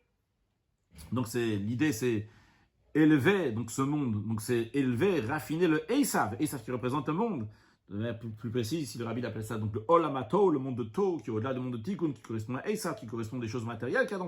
Donc l'idée c'est élever donc ce monde, donc c'est élever, raffiner le Esav qui représente le monde. De manière plus précise, si le Rabbi appelle ça donc le Olamato, le monde de To, qui est au-delà du monde de Tikkun, qui correspond à Esav, qui correspond à des choses matérielles qu'il y a dans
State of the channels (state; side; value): identical; both; correlation 1.00